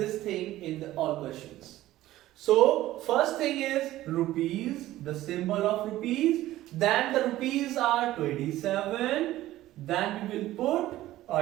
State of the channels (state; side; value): quieter; left; 15.2 dB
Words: thing in the all questions. So first thing is rupees, the symbol of rupees. Then the rupees are 27. Then we will put